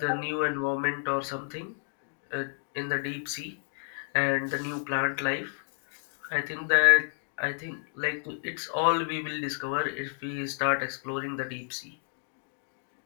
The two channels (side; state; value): right; silent; 57 dB below the other